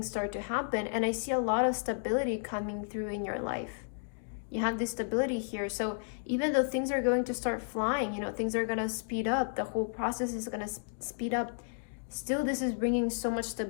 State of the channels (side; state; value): right; silent; digital silence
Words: start to happen. And I see a lot of stability coming through in your life. You have this stability here. So even though things are going to start flying, you know, things are going to speed up, the whole process is going to speed up, still this is bringing so much